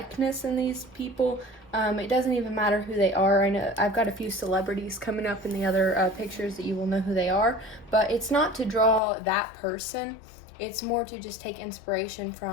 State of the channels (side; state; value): right; drops out; at 9.0 s